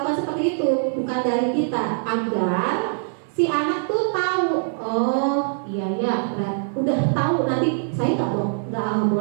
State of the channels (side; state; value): left; silent; digital silence